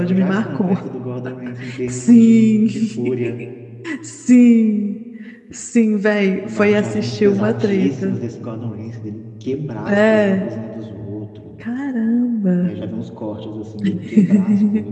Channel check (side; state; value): both; identical; correlation 1.00